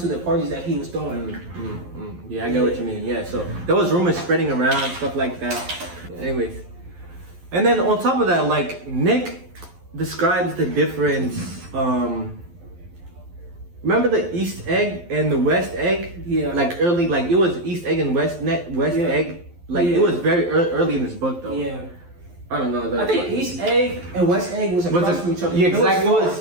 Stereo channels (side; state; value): left; late; 11 ms